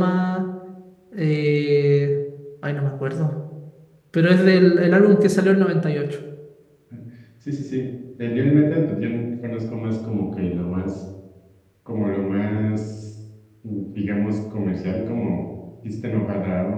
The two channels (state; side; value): identical; both; correlation 1.00